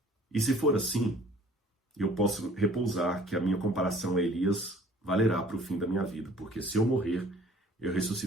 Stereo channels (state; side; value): normal; both; correlation 0.53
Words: E se for assim, eu posso repousar que a minha comparação a Elias valerá para o fim da minha vida, porque se eu morrer, eu